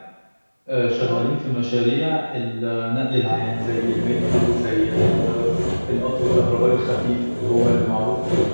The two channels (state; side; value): inverted; both; correlation -1.00